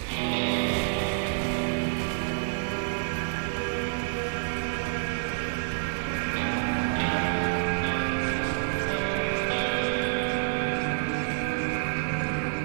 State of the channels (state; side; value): silent; left; digital silence